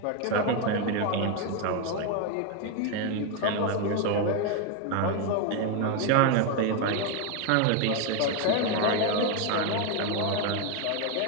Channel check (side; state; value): both; different; correlation 0.01